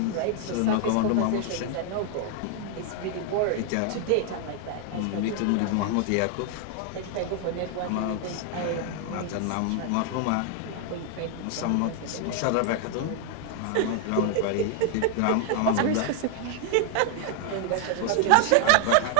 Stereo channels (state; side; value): different; both; correlation 0.00